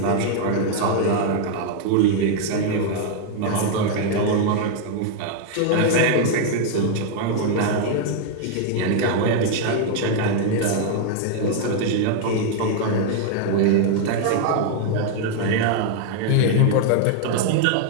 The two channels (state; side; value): different; both; correlation 0.00